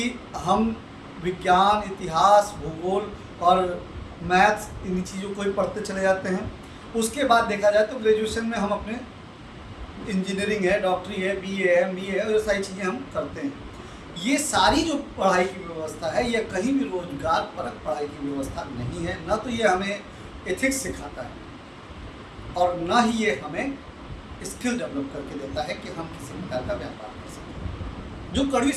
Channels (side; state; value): both; identical; correlation 1.00